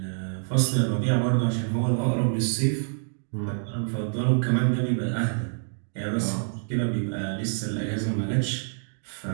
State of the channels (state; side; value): silent; left; digital silence